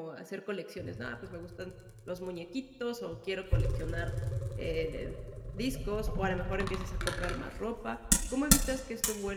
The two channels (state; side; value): identical; both; correlation 1.00